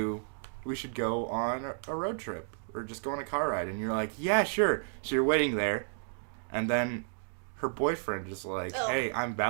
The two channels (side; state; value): left; silent; digital silence